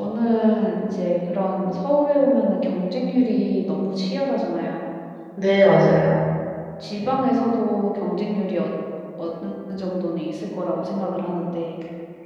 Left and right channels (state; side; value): identical; both; correlation 1.00